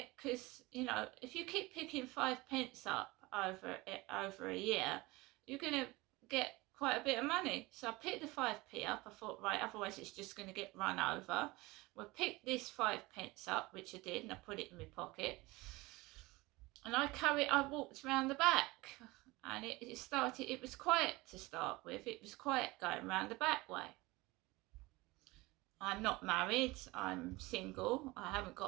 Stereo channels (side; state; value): left; quieter; 21.7 dB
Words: Because, you know, if you keep picking 5 pence up over a year, you're going to get quite a bit of money. So I picked the 5p up. I thought, right, otherwise it's just going to get run over. Well, pick this 5 pence up, which I did, and I put it in my pocket. And I walked around the back, and it was quiet to start with. It was quiet going around the back way. I'm not married, I'm single, I haven't